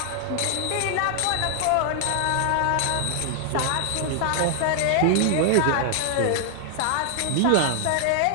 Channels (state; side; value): different; both; correlation 0.00